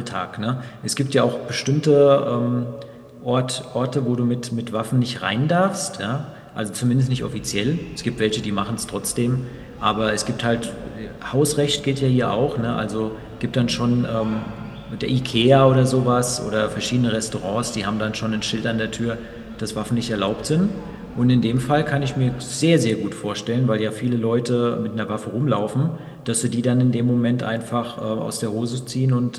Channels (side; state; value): both; identical; correlation 1.00